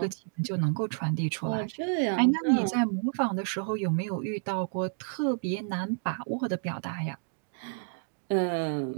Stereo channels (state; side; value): silent; left; digital silence